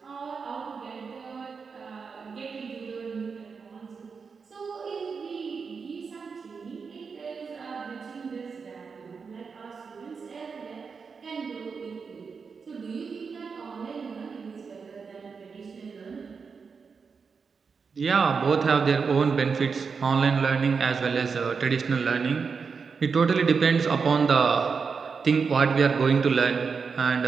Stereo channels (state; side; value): quieter; left; 5.4 dB